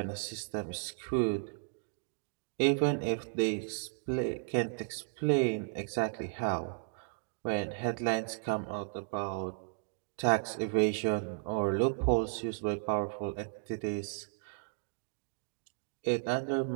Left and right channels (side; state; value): left; silent; digital silence